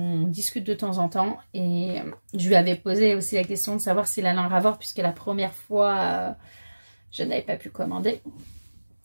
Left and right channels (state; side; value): inverted; both; correlation -1.00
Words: discute de temps en temps. Et je lui avais posé aussi la question de savoir s'il allait en avoir, puisque la première fois, je n'avais pas pu commander.